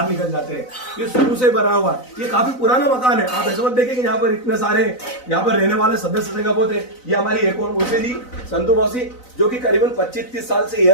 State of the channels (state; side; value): late; right; 4.0 ms